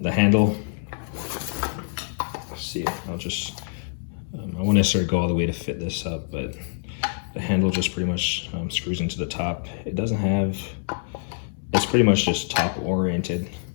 handle. Let's see. I won't necessarily go all the way to fit this up, but the handle just pretty much screws into the top. It doesn't have. It's pretty much just top oriented,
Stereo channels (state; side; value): silent; right; 61 dB below the other